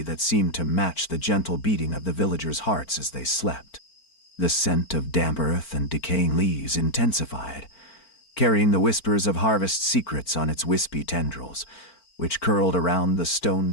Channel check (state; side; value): late; right; 4.4 ms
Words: that seemed to match the gentle beating of the villagers' hearts as they slept. The scent of damp earth and decaying leaves intensified, carrying the whispers of harvest secrets on its wispy tendrils, which curled around the